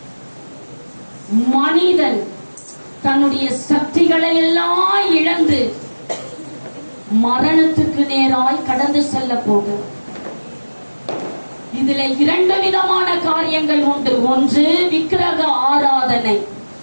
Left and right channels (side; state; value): both; inverted; correlation -1.00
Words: மனிதன் தன்னுடைய சக்திகளை எல்லாம் இழந்து மரணத்துக்கு நேராய் கடந்து செல்ல போகிறது. இதுல இரண்டு விதமான காரியங்கள் உண்டு. ஒன்று விக்கிரக ஆராதனை,